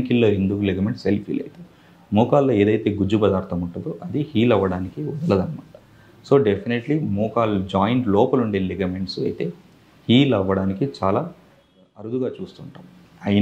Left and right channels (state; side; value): identical; both; correlation 1.00